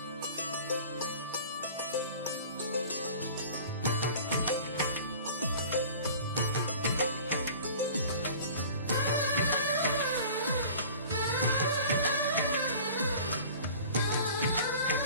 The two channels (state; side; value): inverted; both; correlation -0.43